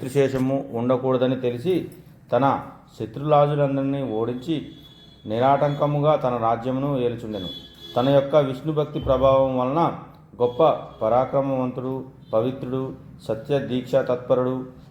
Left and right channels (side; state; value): both; identical; correlation 1.00